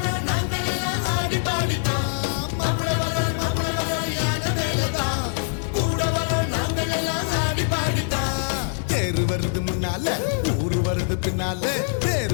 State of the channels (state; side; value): silent; right; digital silence